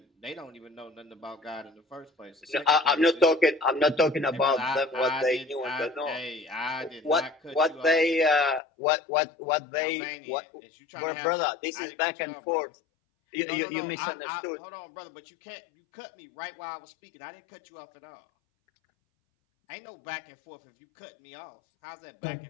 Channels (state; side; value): drops out; right; at 8.6 s